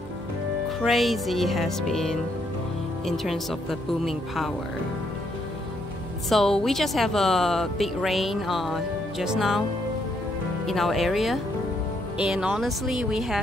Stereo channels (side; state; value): both; normal; correlation 0.74